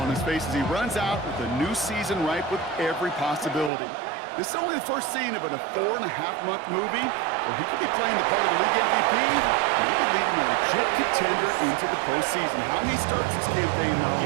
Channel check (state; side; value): drops out; left; at 3.7 s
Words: his face as he runs out with a new season ripe with every possibility. This is only the first scene of a 4.5-month movie where he could be playing the part of the league MVP, maybe leading a legit contender into the postseason. How he starts this campaign, though,